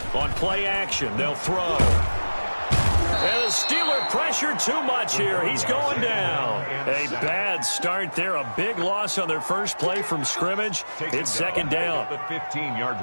On play action, they'll throw. And the Steeler pressure too much here. He's going down. A bad start there. A big loss on their first play from scrimmage. It's second down. The 15-yard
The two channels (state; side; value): inverted; both; correlation -1.00